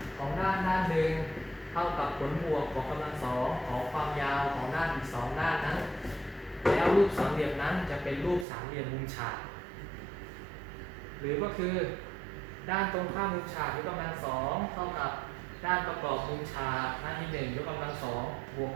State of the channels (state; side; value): drops out; left; at 8.5 s